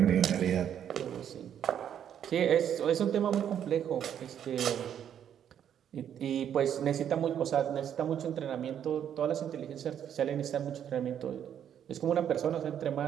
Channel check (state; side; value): quieter; left; 9.4 dB